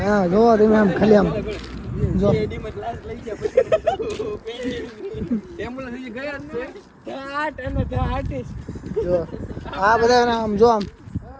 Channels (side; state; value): both; identical; correlation 1.00